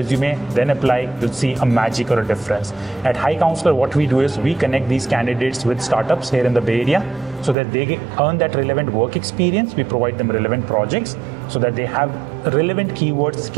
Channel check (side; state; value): left; drops out; at 7.6 s